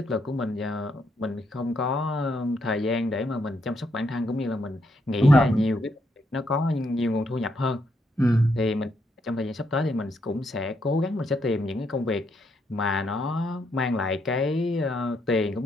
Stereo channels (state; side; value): normal; both; correlation 0.77